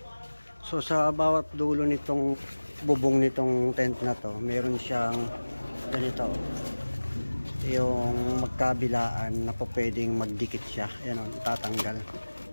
So sa bawat dulo nitong bubong nitong tent na to, meron siyang ganito. Yung magkabilaan na po pwedeng magdikit siya. Ayan o, itatanggal.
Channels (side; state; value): both; inverted; correlation -1.00